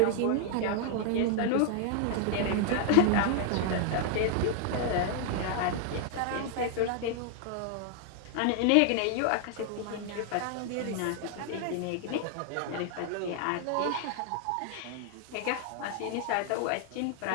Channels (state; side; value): different; both; correlation 0.00